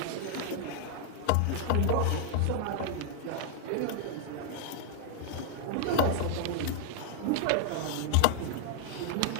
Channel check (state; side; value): different; both; correlation 0.00